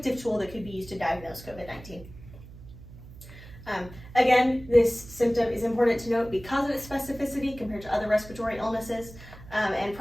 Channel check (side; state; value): right; noise; hum, 17 dB below the sound